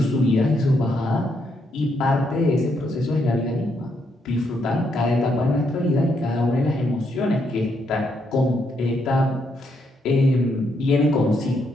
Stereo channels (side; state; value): both; normal; correlation 0.77